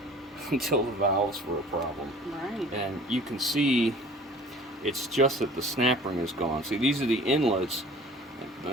were a problem. Right. And you can see it's just that the snap ring is gone. See, these are the inlets.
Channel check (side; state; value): both; normal; correlation 0.47